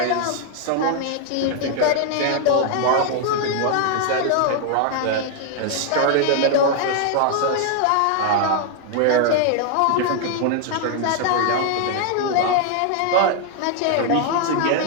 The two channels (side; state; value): both; different; correlation 0.00